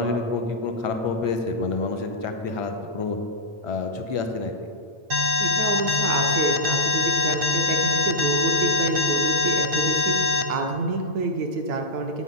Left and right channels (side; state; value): left; late; 8.9 ms